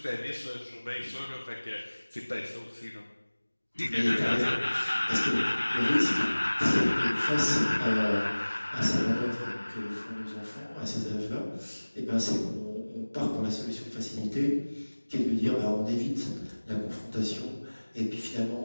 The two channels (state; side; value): inverted; both; correlation -1.00